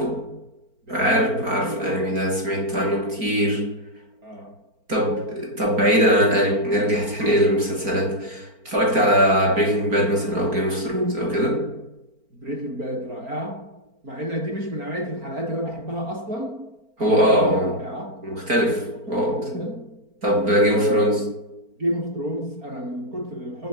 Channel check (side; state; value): left; late; 4.4 ms